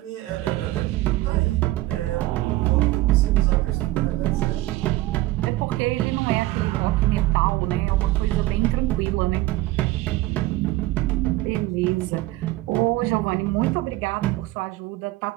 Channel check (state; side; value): quieter; left; 17.7 dB